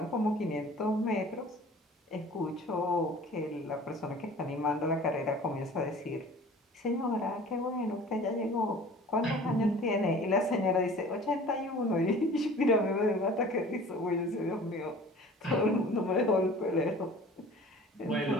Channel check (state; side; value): normal; both; correlation 0.45